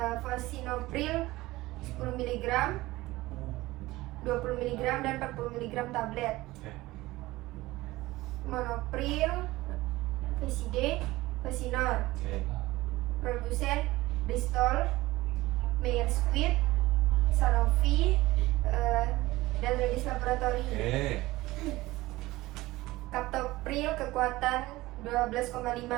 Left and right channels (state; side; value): quieter; left; 18.8 dB